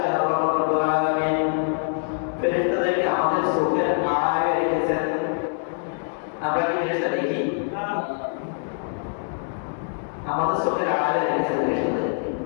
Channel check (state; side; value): silent; right; digital silence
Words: আল্লাহ রাব্বুল আলামিন ফেরেশতাদেরকে আমাদের চোখের আড়ালে রেখেছেন। আমরা কি ফেরেশতা দেখি? আমাদের চোখের আড়ালে রেখেছেন ফেরেশতাদেরকে।